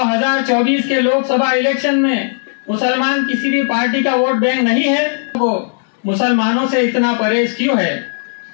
के लोकसभा इलेक्शन में मुसलमान किसी भी पार्टी का वोट बैंक नहीं है? वो मुसलमानों से इतना परहेज क्यों है?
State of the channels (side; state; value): right; silent; digital silence